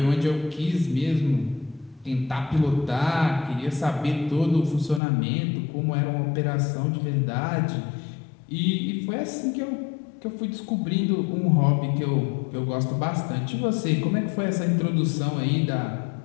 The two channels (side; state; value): right; drops out; at 5.0 s